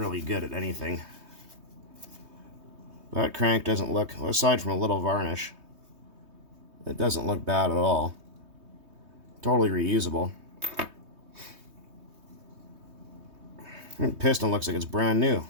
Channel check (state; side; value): late; left; 3.2 ms